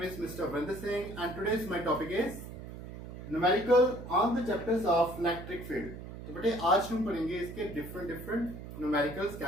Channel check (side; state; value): right; noise; hum, 11 dB below the sound